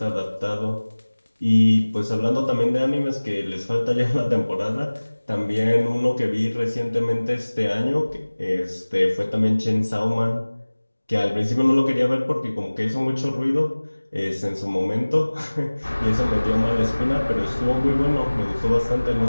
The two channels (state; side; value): inverted; both; correlation -1.00